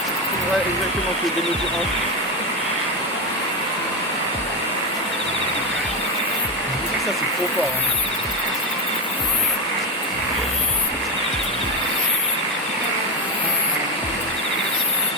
Ouais, exactement, tu es démesuré. Ça c'est trop fort, hein.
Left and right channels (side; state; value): both; normal; correlation 0.14